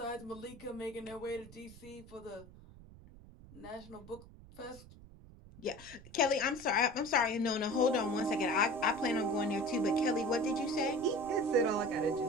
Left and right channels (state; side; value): noise; right; rumble, 19 dB below the sound